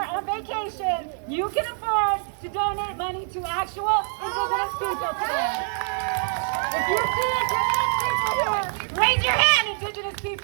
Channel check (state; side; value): silent; left; digital silence